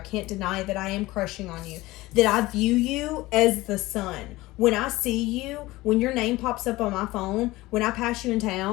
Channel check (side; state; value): right; quieter; 19.1 dB